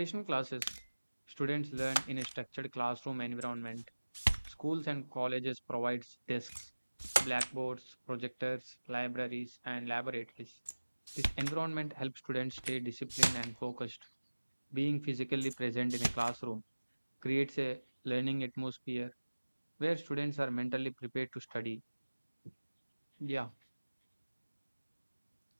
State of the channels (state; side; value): inverted; both; correlation -1.00